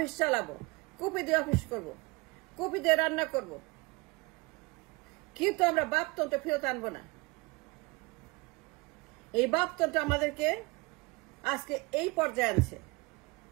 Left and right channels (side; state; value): left; quieter; 25.4 dB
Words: চালাবো, কুপি দিয়ে অফিস করব, কুপি দিয়ে রান্না করব, কিন্তু আমরা বাপতন্ত্র ফেরত আনবো না। এই বাপতন্ত্র আমাদেরকে আজকে এই পর্যায়ে আনছে।